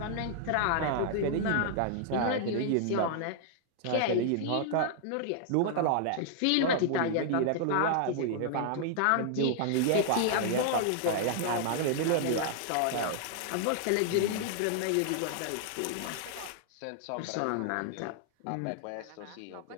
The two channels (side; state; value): both; different; correlation -0.01